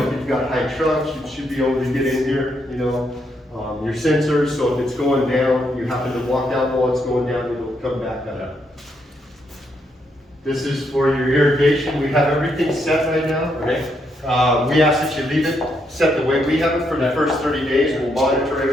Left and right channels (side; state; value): both; normal; correlation 0.77